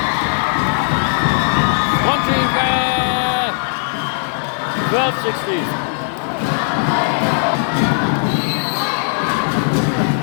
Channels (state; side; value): silent; right; digital silence